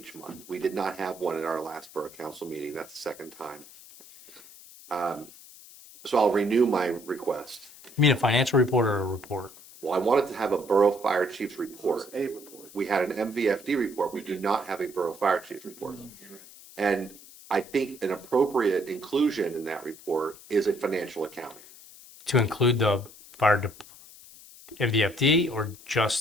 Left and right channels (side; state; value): left; noise; hiss, 20 dB below the sound